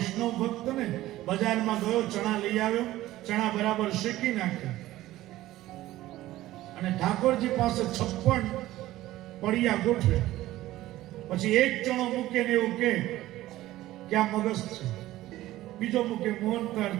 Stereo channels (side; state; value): left; quieter; 15.7 dB